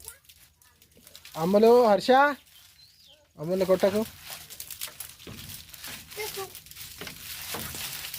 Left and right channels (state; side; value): identical; both; correlation 1.00